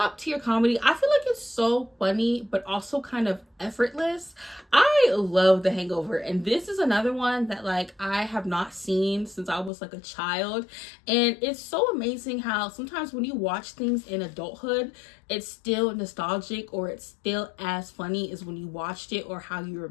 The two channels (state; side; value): drops out; right; at 9.7 s